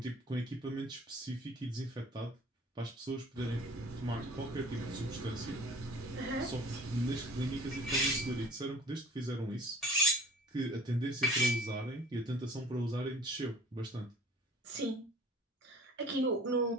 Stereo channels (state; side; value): normal; both; correlation 0.48